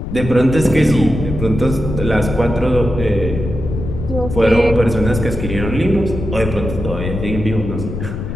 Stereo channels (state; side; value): noise; left; rumble, 6 dB below the sound